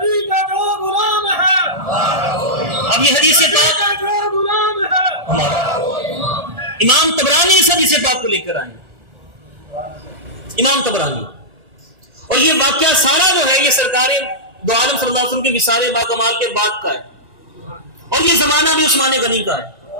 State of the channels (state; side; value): late; left; 1.4 ms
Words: کا جو غلام ہے، اب یہ حدیث پاک جو غلام ہے، امام طبرانی اس حدیث پاک کو لے کر آئے، امام طبرانی، اور یہ واقعہ سارا جو ہے یہ سرکار دو عالم صلی اللہ علیہ وسلم کے وصال باکمال کے بعد کا ہے، اور یہ زمانہ بھی عثمان غنی کا ہے،